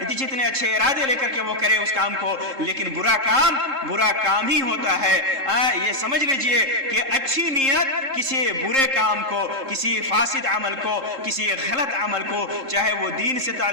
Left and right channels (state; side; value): late; left; 3.7 ms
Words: اچھے ارادے لے کر کے وہ کرے اس کام کو، لیکن برا کام ہی ہوتا ہے۔ یہ سمجھ لیجئے کہ اچھی نیت کسی برے کام کو، کسی فاسد عمل کو، کسی غلط عمل کو، چاہے وہ دین سے